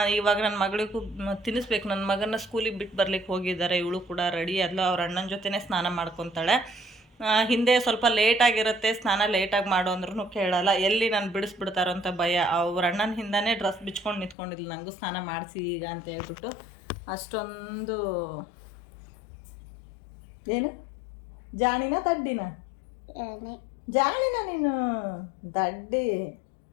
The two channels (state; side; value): drops out; right; at 14.4 s